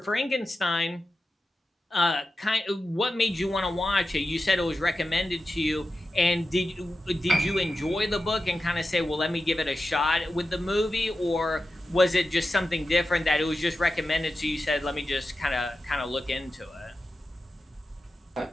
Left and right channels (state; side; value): normal; both; correlation 0.92